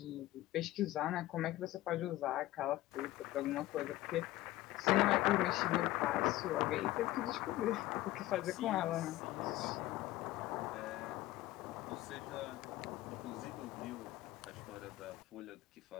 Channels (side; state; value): right; quieter; 16.4 dB